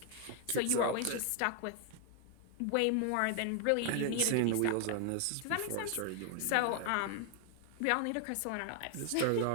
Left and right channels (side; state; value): both; different; correlation 0.00